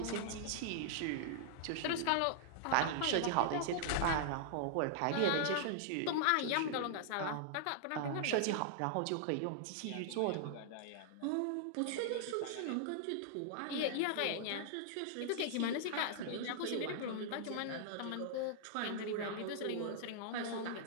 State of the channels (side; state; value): both; different; correlation -0.01